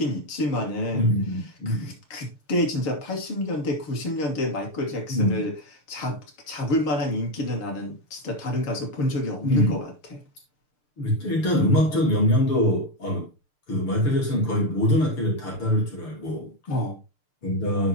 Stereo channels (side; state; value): right; late; 6.7 ms